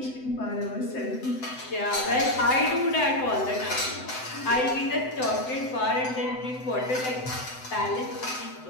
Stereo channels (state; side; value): late; right; 7.9 ms